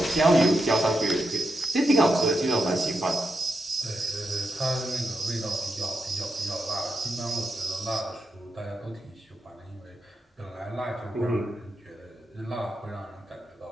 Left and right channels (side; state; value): both; normal; correlation 0.85